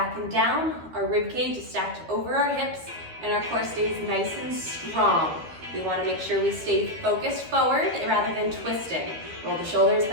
and down. Our rib cage is stacked over our hips, and our core stays nice and strong. We want to make sure we stay focused forward rather than twisting. Roll the shoulders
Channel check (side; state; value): left; late; 13 ms